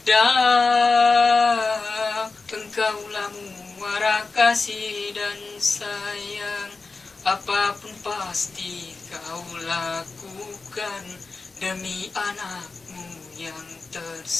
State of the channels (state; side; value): quieter; right; 4.0 dB